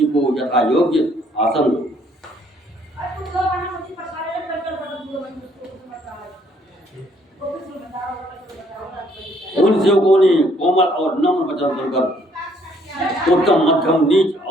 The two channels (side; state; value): both; normal; correlation 0.65